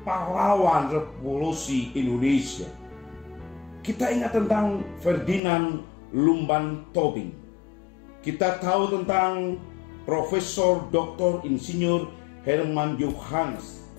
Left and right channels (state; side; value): drops out; right; at 5.4 s